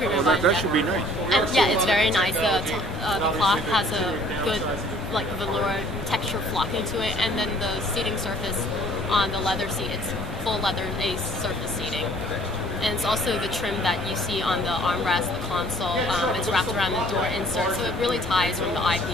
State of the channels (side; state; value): both; normal; correlation 0.56